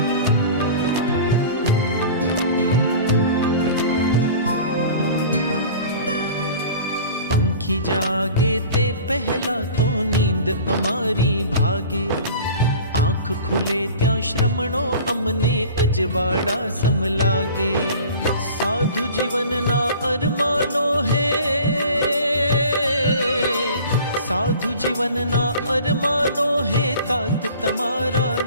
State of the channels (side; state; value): both; inverted; correlation -0.42